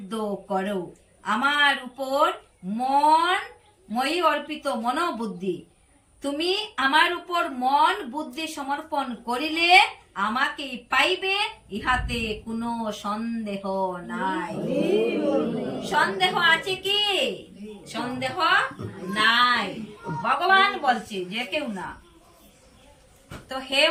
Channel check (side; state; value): both; identical; correlation 1.00